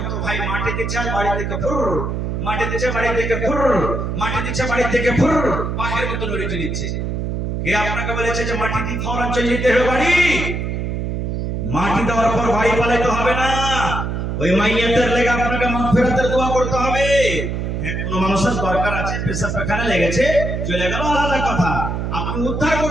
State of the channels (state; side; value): noise; right; hum, 2 dB below the sound